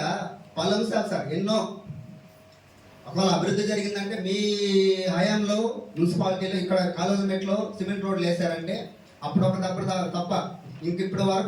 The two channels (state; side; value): identical; both; correlation 1.00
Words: పలు అంశాలు సార్ ఎన్నో. ఒకవేళ అభివృద్ధి జరిగిందంటే మీ హయాంలో మున్సిపాలిటీలో ఇక్కడ కాలేజీమెట్లో సిమెంట్ రోడ్లు వేసారంటే అప్పుడు తప్ప ఇంకిప్పటి